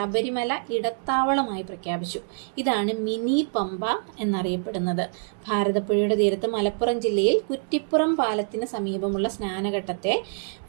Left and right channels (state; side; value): silent; left; digital silence